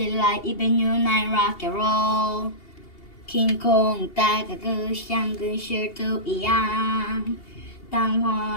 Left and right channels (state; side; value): late; right; 2.8 ms